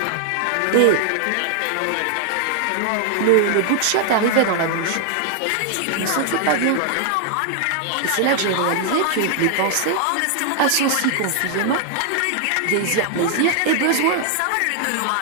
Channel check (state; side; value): different; both; correlation 0.00